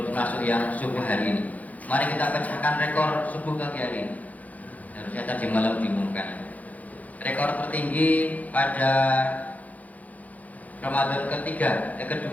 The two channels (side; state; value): right; late; 0.076 ms